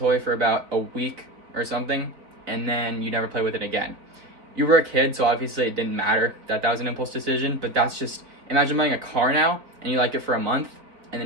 for about a week or something, and then you never play with it again. You were a kid, so obviously it didn't matter that was an impulse decision, but that's just, imagine buying a car now, and you like it for a month, and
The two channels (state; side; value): late; left; 4.0 ms